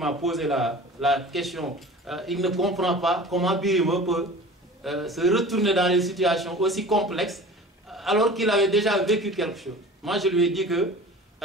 posé la question. Il ne comprend pas comment Birima peut se retourner dans des situations aussi complexes alors qu'il avait déjà vécu quelque chose. Moi, je lui ai dit que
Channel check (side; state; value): both; normal; correlation 0.40